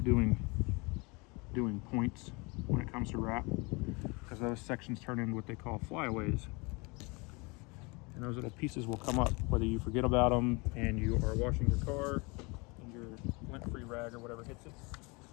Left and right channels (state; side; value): quieter; right; 27.8 dB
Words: doing points when it comes to wrap, because those sections turn into what they call flyaways. And those little pieces will come up whether you forget about them and you are washing your car and your lint-free rag or whatever hits it.